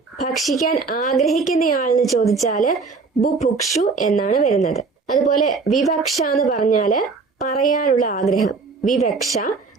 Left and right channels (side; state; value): left; quieter; 4.5 dB